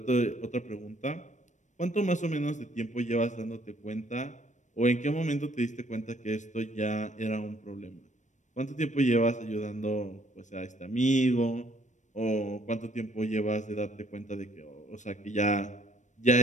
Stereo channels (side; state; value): right; late; 0.35 ms